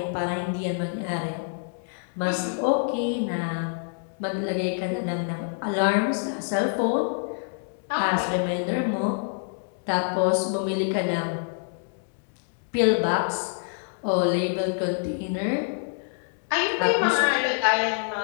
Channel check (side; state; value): right; silent; digital silence